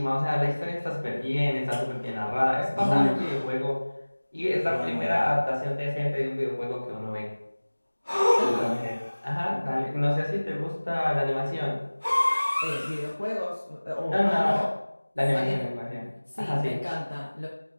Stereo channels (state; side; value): inverted; both; correlation -1.00